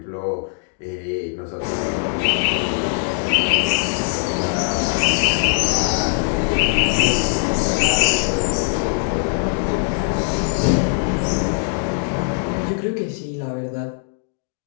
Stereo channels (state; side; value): silent; right; digital silence